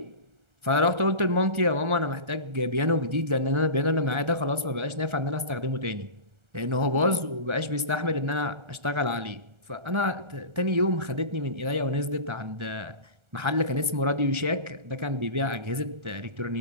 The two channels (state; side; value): late; left; 1.4 ms